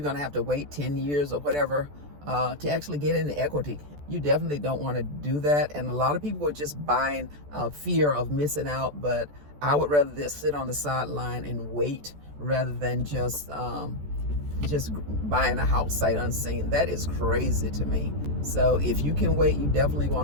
gonna have to wait 10 years or whatever to actually get into equity. You definitely don't want to do that, and a lot of people are just buying fear of missing out. But I would rather just sit on the sideline and wait rather than just buying a house sight unseen. That is crazy to me. So if you can wait, you definitely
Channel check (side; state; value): left; late; 14 ms